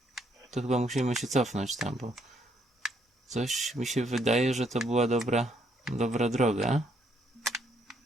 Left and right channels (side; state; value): both; normal; correlation 0.71